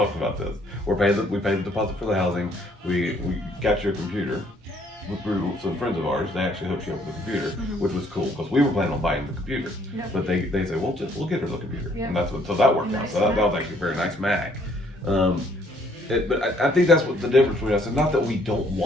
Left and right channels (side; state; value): both; normal; correlation 0.64